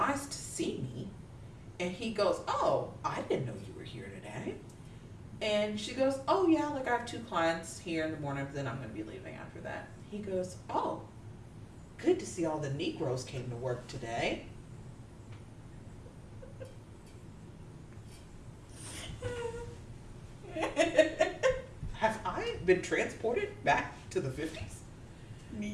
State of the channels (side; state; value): both; identical; correlation 1.00